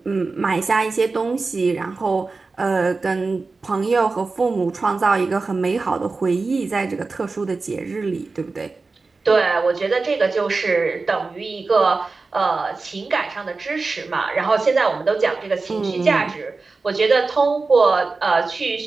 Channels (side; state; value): left; quieter; 3.9 dB